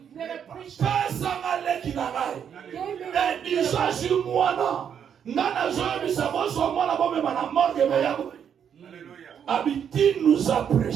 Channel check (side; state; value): left; quieter; 8.2 dB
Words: never preached. Pesanga leki na ngai. Give me Edisa si mwana. Nana zoyebisa boso mwana bomema na morgue meya boye. Abiti nous a